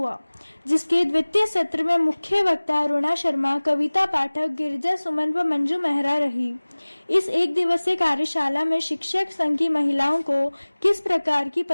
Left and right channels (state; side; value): inverted; both; correlation -1.00